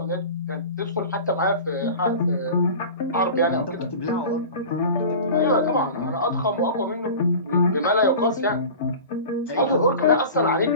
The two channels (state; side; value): inverted; both; correlation -0.36